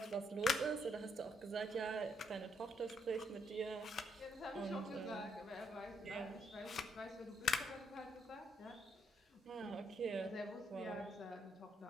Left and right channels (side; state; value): both; normal; correlation 0.75